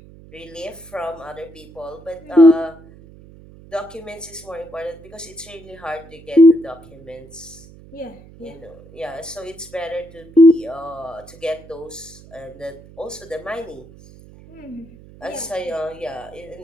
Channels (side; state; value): right; noise; hum, 21 dB below the sound